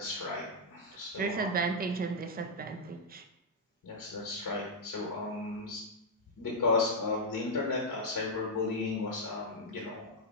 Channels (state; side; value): normal; both; correlation -0.03